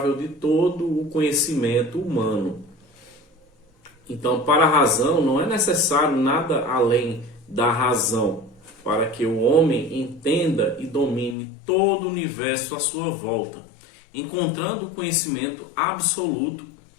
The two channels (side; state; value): right; drops out; at 11.4 s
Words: de todo o conhecimento humano. Então, para a razão, não é necessário nada além da razão para que o homem entenda e domine todo o universo à sua volta, encontrando o conhecimento absoluto